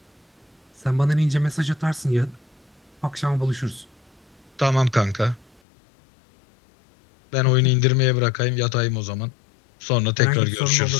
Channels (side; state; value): right; drops out; at 5.6 s